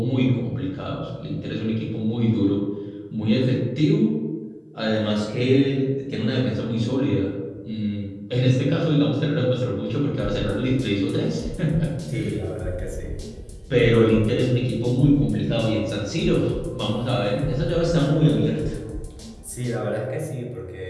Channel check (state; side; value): identical; both; correlation 1.00